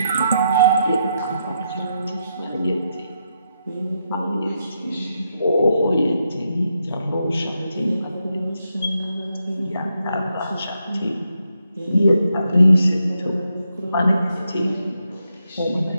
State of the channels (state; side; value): inverted; both; correlation -0.81